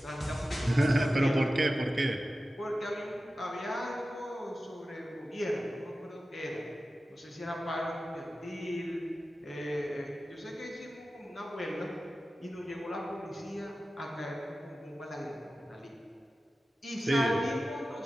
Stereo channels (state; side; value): normal; both; correlation 0.94